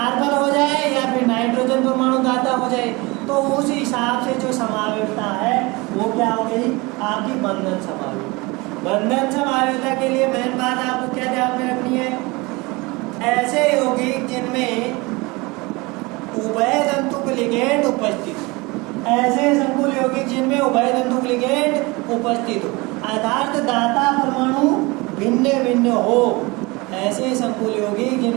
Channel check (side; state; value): left; quieter; 24.6 dB